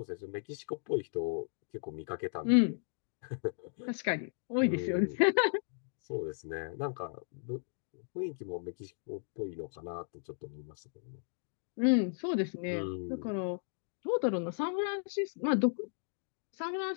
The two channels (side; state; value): right; silent; digital silence